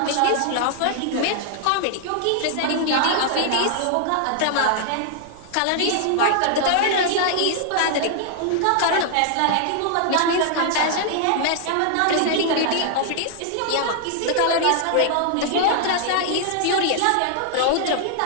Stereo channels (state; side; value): different; both; correlation 0.00